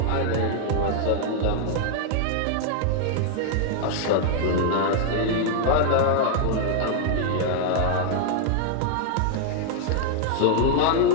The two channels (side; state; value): both; different; correlation 0.00